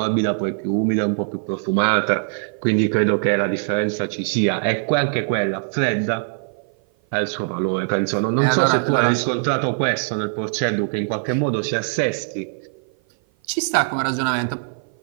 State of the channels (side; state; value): left; silent; 56 dB below the other